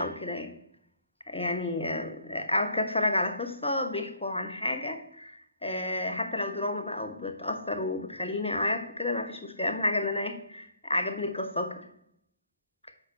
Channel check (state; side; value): inverted; both; correlation -0.62